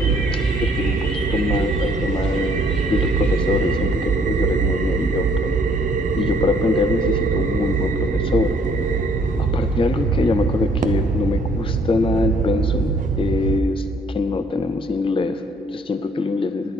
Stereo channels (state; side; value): normal; both; correlation 0.63